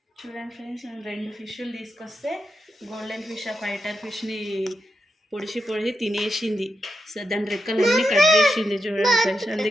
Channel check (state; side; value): normal; both; correlation 0.87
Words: చూడండి ఫ్రెండ్స్, నేను 2 ఫిష్లు తీసుకొస్తే గోల్డెన్ ఫిష్, ఆ ఫైటర్ ఫిష్ని పొడిచి తినేసింది. సో దాని రెక్కలు అన్నీ కట్ చేసింది. చూడండి ఫ్రెండ్స్,